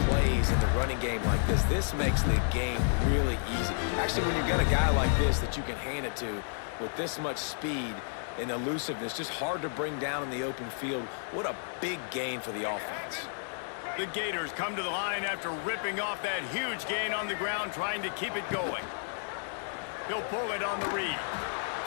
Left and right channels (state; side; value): silent; right; digital silence